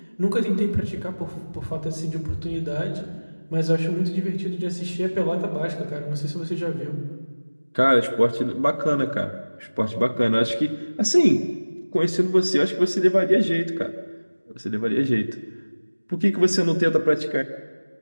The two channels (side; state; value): both; inverted; correlation -1.00